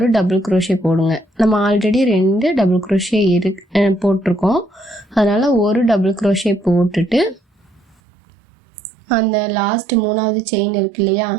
டபுள் crochet போடுங்க. நம்ம ஆல்ரெடி 2 டபுள் crochet போட்டிருக்கோம். அதனால் ஒரு டபுள் crochet போட்டுட்டு அந்த லாஸ்ட் 3வது செயின் இருக்கு இல்லையா,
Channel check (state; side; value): drops out; left; at 8.0 s